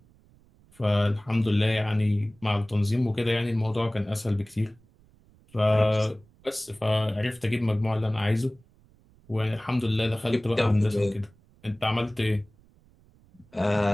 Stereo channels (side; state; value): right; noise; rumble, 30 dB below the sound